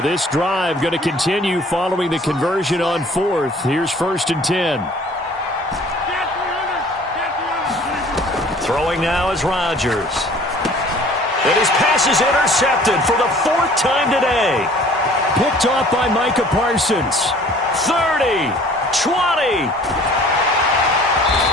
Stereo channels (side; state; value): both; normal; correlation 0.51